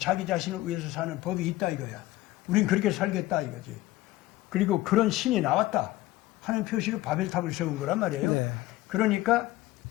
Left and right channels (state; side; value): quieter; right; 17.1 dB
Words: 자신을 위해서 사는 법이 있다 이거야. 우린 그렇게 살겠다 이거지. 그리고 그런 신이 나왔다 하는 표시로 바벨탑을 세운 거란 말이에요. 네. 그러니까